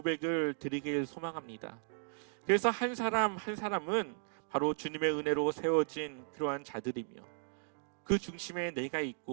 드리길 소망합니다. 그래서 한 사람 한 사람은 바로 주님의 은혜로 세워진 그러한 자들이며 그 중심에 내가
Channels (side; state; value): left; silent; digital silence